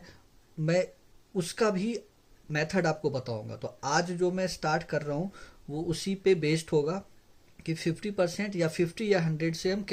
मैं उसका भी मेथड आपको बताऊंगा। तो आज जो मैं स्टार्ट कर रहा हूँ वो उसी पे बेस्ड होगा कि 50% या 50 या 100 से हम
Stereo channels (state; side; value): identical; both; correlation 1.00